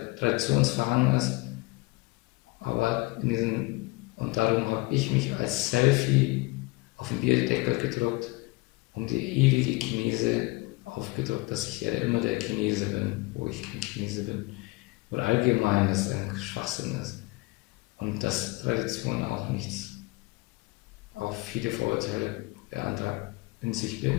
traditionsverhangen ist. Aber und darum habe ich mich als Selfie auf den Bierdeckel gedruckt, um die ewige Chinese aufgedruckt, dass ich ja immer der Chinese bin, wo ich kein Chinese bin. Oder allgemein, dass es ein Schwachsinn ist. Und dass Tradition auch viele Vorurteile in sich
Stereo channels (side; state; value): right; quieter; 23.9 dB